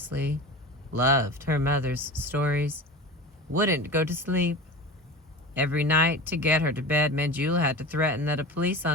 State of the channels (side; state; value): both; normal; correlation 0.32